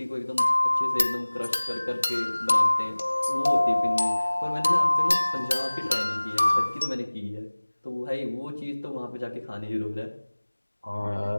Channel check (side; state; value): both; inverted; correlation -1.00